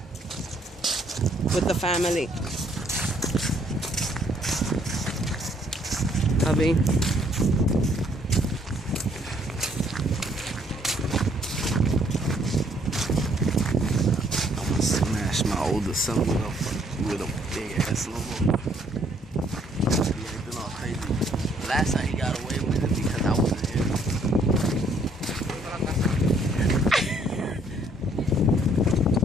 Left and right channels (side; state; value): both; normal; correlation 0.65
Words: with the family. Hubby. I'm gonna smash my older son with a big ass snowball. He ain't been all crazy. Last time he got away with it because I wasn't here.